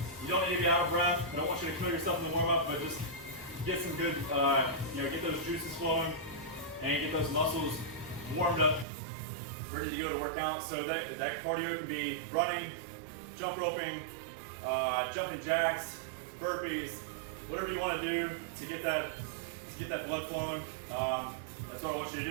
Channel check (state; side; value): drops out; left; at 8.8 s